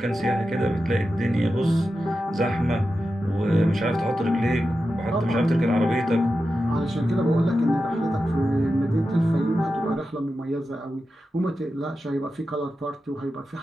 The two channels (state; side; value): normal; both; correlation 0.91